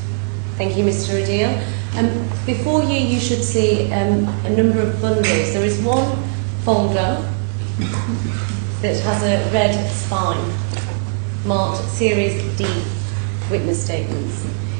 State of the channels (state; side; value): silent; left; 67 dB below the other